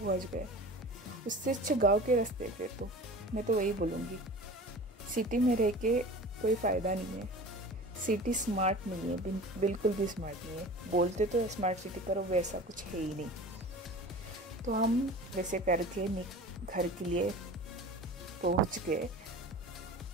गए। उससे अच्छा गाँव के रास्ते। फिर तो मैं तो वही बोलूँगी, सिटी में रह के कोई फ़ायदा नहीं है। सिटी स्मार्ट नहीं है, बिल्कुल भी स्मार्ट नहीं है। बोलते तो है स्मार्ट सिटी, पर वैसा कुछ है ही नहीं। तो हम वैसे करके घर के लिए पहुंच गए।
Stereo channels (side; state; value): both; normal; correlation 0.38